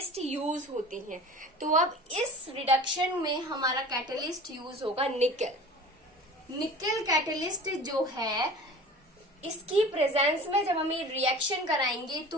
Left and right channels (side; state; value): both; normal; correlation 0.40